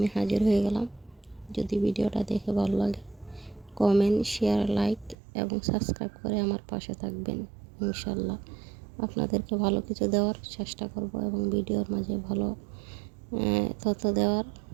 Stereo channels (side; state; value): left; drops out; at 5.2 s